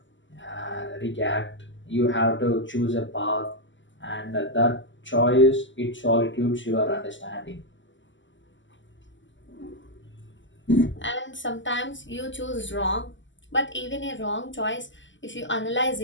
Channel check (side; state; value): right; late; 0.54 ms